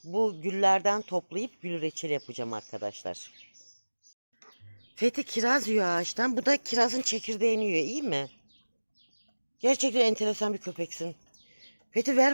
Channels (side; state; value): both; inverted; correlation -1.00